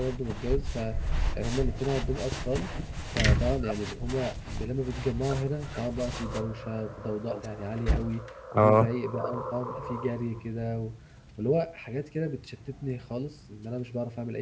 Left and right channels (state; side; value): identical; both; correlation 1.00